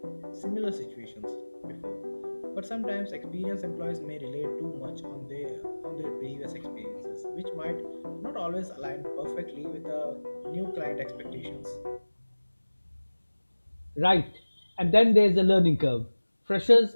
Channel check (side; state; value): both; inverted; correlation -1.00